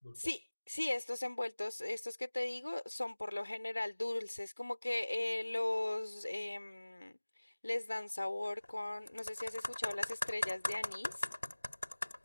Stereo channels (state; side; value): inverted; both; correlation -1.00